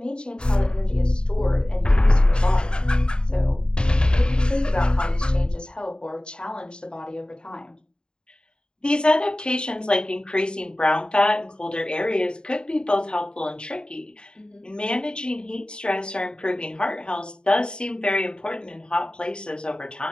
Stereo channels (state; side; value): late; right; 0.049 ms